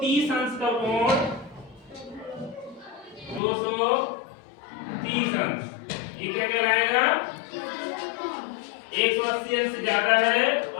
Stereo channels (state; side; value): drops out; right; at 3.4 s